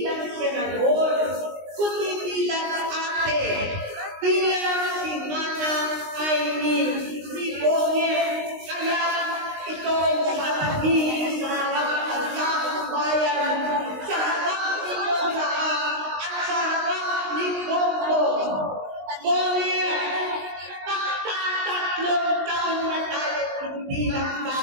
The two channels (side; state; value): left; late; 19 ms